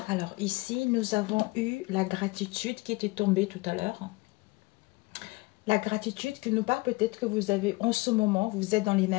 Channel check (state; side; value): quieter; right; 23.9 dB